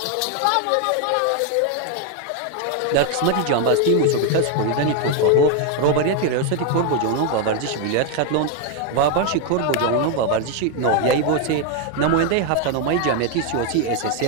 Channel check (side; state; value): both; different; correlation 0.01